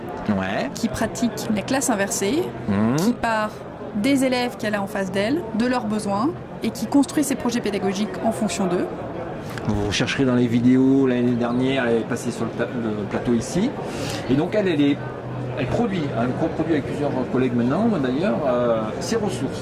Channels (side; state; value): both; identical; correlation 1.00